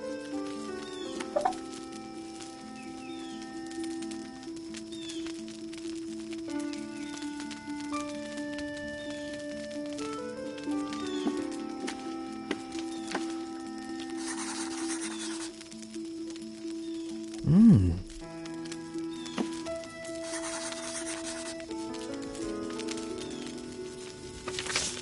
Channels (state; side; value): identical; both; correlation 1.00